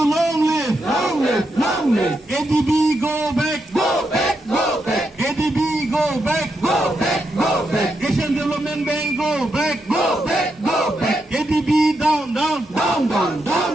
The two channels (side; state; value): both; normal; correlation 0.83